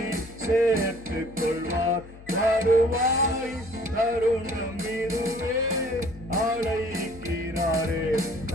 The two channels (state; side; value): noise; left; hum, 19 dB below the sound